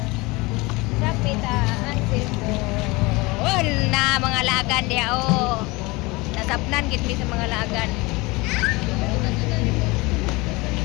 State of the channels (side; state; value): right; quieter; 23.7 dB